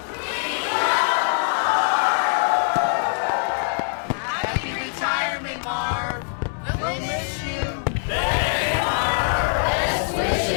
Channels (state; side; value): silent; right; 63 dB below the other